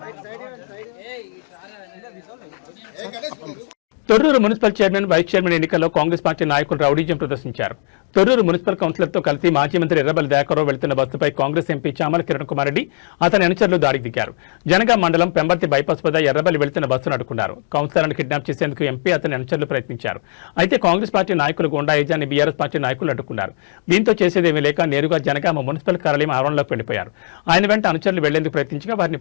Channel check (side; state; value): right; silent; digital silence